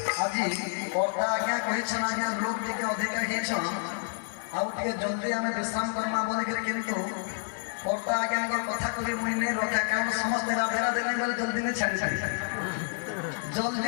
आज्ञा कहीछन आज्ञा लोक टिके अधिका हेछन आउ टिके जल्दी आमे विश्राम करमा बोले किंतु कर्ता आज्ञा कथा को मुई नहीं रखा कारण समस्त राधे राधे नहीं बोले जल्दी नहीं छाड़ी छाड़ी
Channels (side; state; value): right; silent; digital silence